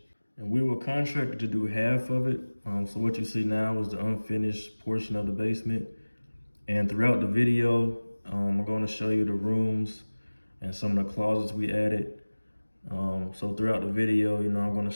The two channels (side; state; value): both; inverted; correlation -1.00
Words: And we were contracted to do half of it. So what you see now is the unfinished portion of the basement. And throughout the video, I'm going to show you the rooms and some of the closets we added. So throughout the video, I'm going to